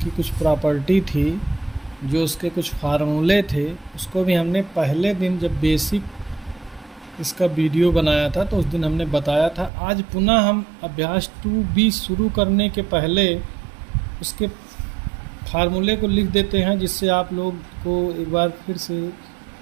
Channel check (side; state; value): left; drops out; at 9.7 s